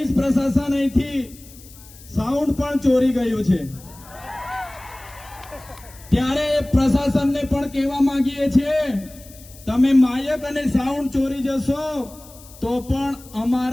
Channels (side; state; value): left; noise; hiss, 21 dB below the sound